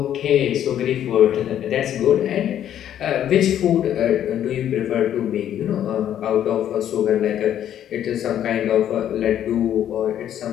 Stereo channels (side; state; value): right; quieter; 10.6 dB